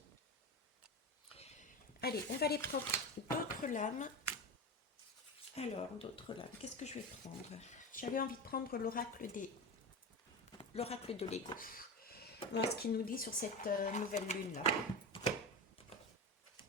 Allez, on va aller prendre d'autres lames. Alors, d'autres lames. Qu'est-ce que je vais prendre? J'avais envie de prendre l'oracle de Lego. Voir ce qu'il nous dit sur cette nouvelle lune là.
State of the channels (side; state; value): both; normal; correlation 0.23